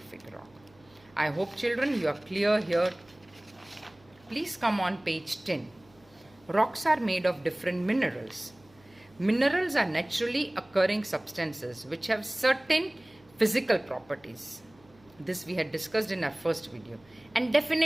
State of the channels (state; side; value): noise; right; hum, 29 dB below the sound